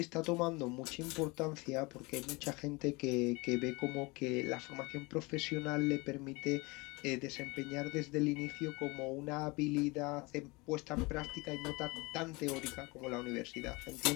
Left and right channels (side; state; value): right; quieter; 25.4 dB